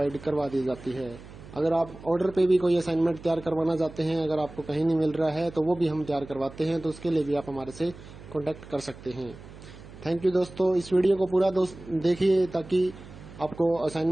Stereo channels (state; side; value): noise; right; hum, 17 dB below the sound